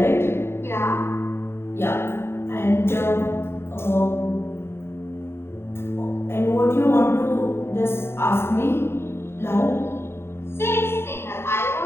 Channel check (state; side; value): late; right; 0.12 ms